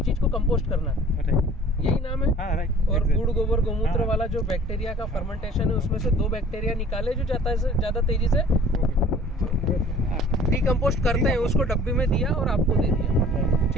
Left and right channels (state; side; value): normal; both; correlation 0.50